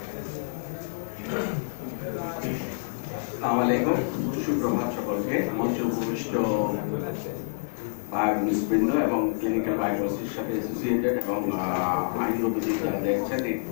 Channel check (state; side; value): silent; right; digital silence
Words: আসসালামু আলাইকুম, সুপ্রভাত সকলকে। মঞ্চে উপবিষ্ট বায়োকেমিস্টবৃন্দ এবং ক্লিনিক্যাল বায়োকেমিস্ট্রির সাথে অ্যাসোসিয়েটেড এবং আইনগতদের যারা দেখছেন